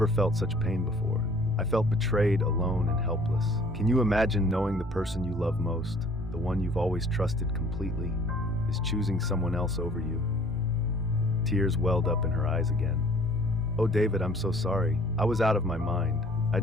felt such pain before. I felt betrayed, alone, and helpless. Can you imagine knowing the person you love most, the one you've always trusted completely, is choosing someone else over you? Tears welled up in her eyes again. Oh, David, I'm so sorry. I was out of my mind.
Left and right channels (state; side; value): normal; both; correlation 0.55